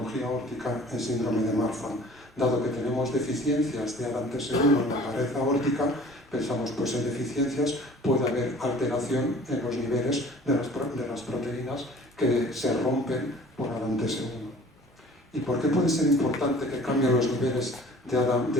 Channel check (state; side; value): normal; both; correlation 0.48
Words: aórtica en síndrome de Marfan. Dado que tenemos deficiencias de ADAMTS1 en la pared aórtica, pensamos, pues en deficiencias puede haber alteración en los niveles de las proteínas que se rompen por qué puede ser importante que cambien los niveles